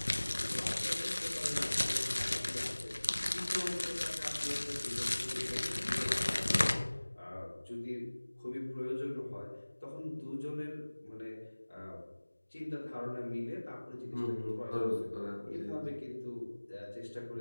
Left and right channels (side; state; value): both; inverted; correlation -1.00